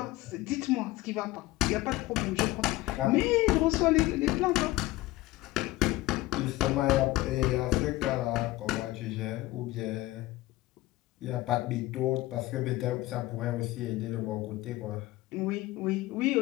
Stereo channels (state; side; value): quieter; right; 18.2 dB